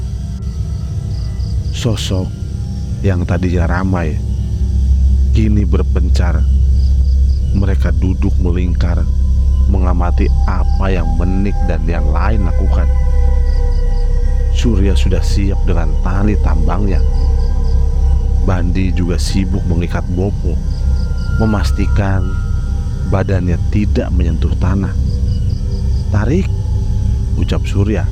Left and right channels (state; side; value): identical; both; correlation 1.00